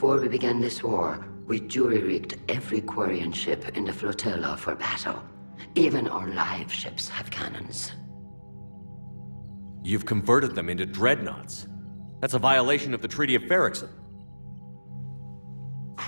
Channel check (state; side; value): inverted; both; correlation -1.00